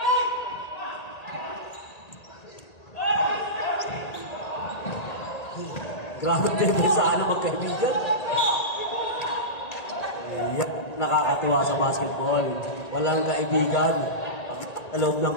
Grabe depensahan ng magkaibigan. Yeah, nakakatuwa sa basketball. Walang kaibigan sa loob ng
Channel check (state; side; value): late; right; 1.8 ms